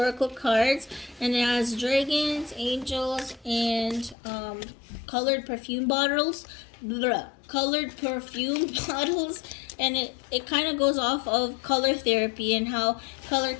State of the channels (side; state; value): right; drops out; at 4.2 s